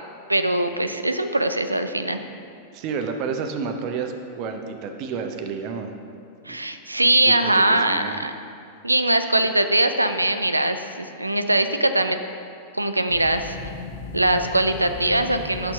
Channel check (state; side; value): inverted; both; correlation -0.78